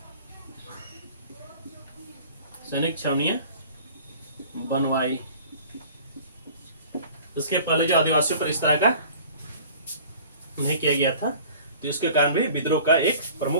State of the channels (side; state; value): both; inverted; correlation -0.46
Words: छावनियां बनवाई। उसके पहले जो आदिवासियों पर इस तरह का नहीं किया गया था, तो इसके कारण भी विद्रोह का एक